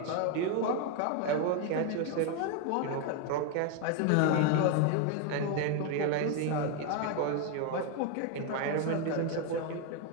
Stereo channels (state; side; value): different; both; correlation 0.01